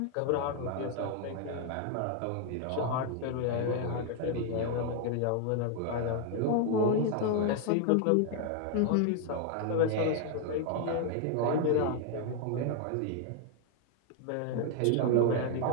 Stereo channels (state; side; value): different; both; correlation 0.00